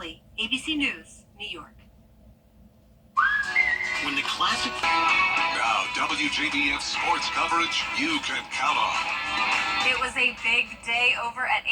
ABC News, New York. When the classic... Now, WJBF sports coverage you can count on. It was a big day over at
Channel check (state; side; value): identical; both; correlation 1.00